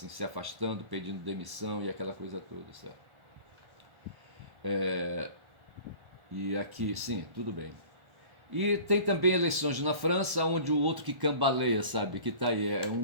se afastando, pedindo demissão e aquela coisa toda, certo? E aqui, sim, tudo bem. E tem também eleições na França, onde o outro que cambaleia, sabe, que tá aí, é um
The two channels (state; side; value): late; left; 1.4 ms